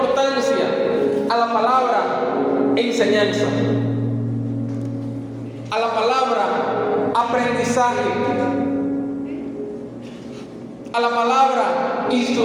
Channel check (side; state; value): both; identical; correlation 1.00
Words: a la palabra enseñanza. a la palabra aprendizaje, a la palabra